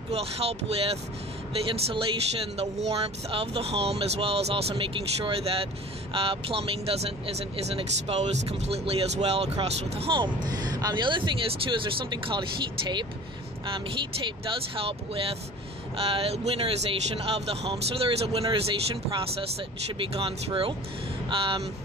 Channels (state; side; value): normal; both; correlation 0.41